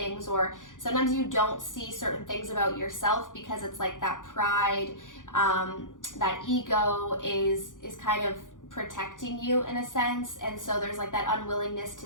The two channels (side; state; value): right; late; 0.88 ms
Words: or sometimes you don't see certain things about yourself because it's like that pride, that ego is kind of protecting you in a sense. And so there's like that unwillingness